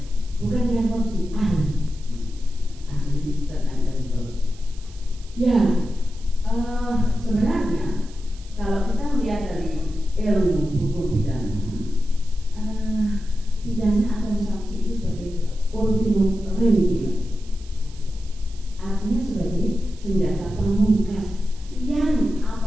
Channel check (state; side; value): noise; right; hiss, 24 dB below the sound